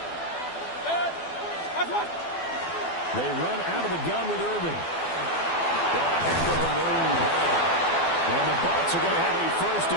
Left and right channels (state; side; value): late; right; 12 ms